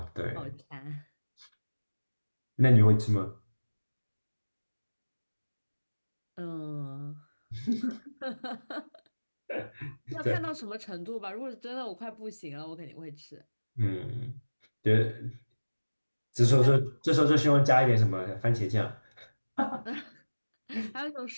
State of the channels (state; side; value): inverted; both; correlation -1.00